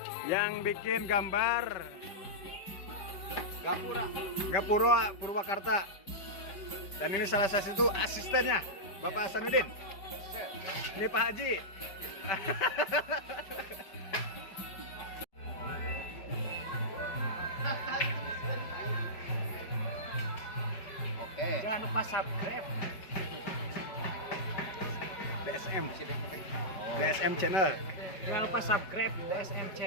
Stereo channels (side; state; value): right; late; 5.2 ms